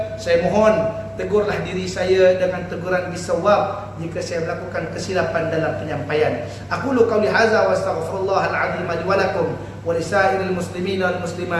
saya mohon tegurlah diri saya dengan teguran bisawab jika saya melakukan kesilapan dalam penyampaian. Aqulu qawli hadza wa astaghfirullahal azim li wa lakum wa lisairil muslimin wal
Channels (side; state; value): both; identical; correlation 1.00